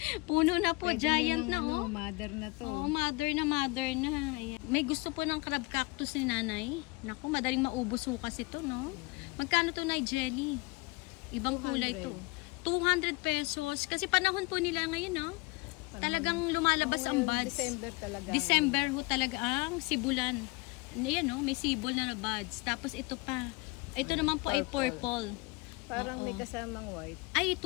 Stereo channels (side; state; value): right; quieter; 24.7 dB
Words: Puno na po, Pwede giant ng na oh. Mother na to. Oo, mother na. Ayan. May gusto po ng crab cactus ni nanay. Naku, madaling maubos ho kasi to, no? Magkano to, Nay Jelly? Ibang kulay to. 200 pesos. Kasi panahon po nila ngayon, no? Talagang lumalabas ang buds. December talaga. December ho talaga ang sibulan. Ayan, no? May sibol na buds. Tapos ito pa. Ito naman po ay purple. Parang Oo. may kasamang white. Ay,